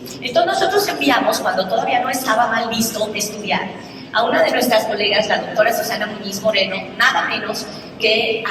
Entonces nosotros enviamos, cuando todavía no estaba mal visto estudiar, a una de nuestras colegas, la doctora Susana Muñiz Moreno, nada menos que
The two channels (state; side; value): identical; both; correlation 1.00